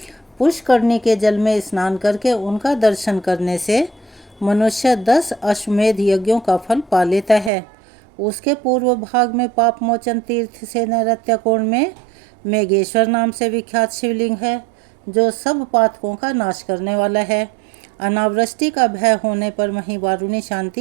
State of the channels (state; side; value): drops out; left; at 7.5 s